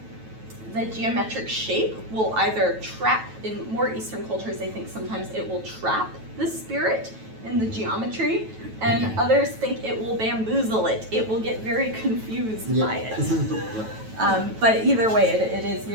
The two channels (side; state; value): left; late; 9.2 ms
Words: the geometric shape will either trap, in more Eastern cultures, they think sometimes it will trap the spirit in the geometry, and others think it will bamboozle it. It will get very confused by it. But either way, it is